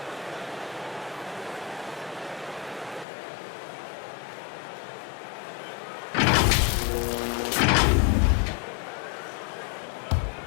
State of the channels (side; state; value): right; drops out; at 3.1 s